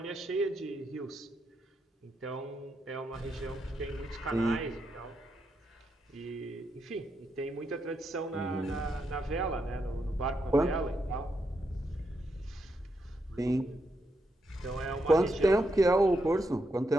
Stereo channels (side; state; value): both; normal; correlation 0.82